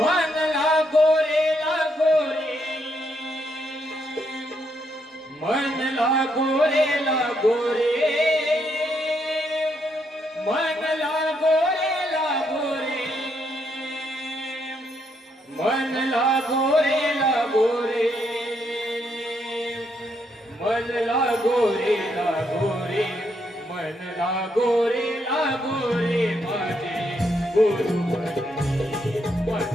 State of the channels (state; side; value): normal; both; correlation 0.76